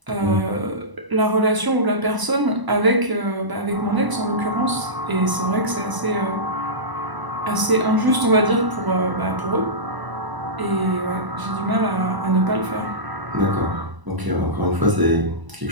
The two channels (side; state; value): left; late; 1.0 ms